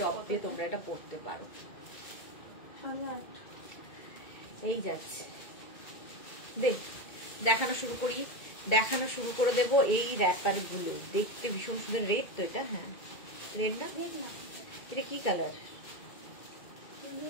দিয়ে তোমরা এটা পরতে পারো। এই যাচ্ছে, দেখানো শুরু করি, দেখানো শুরু করে দেবো। এই র্যাপার গুলো দেখতে ভীষণ সুন্দর। রেড তো এটা, হ্যাঁ রেড না, এটা কি কালার?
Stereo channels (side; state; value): right; late; 2.3 ms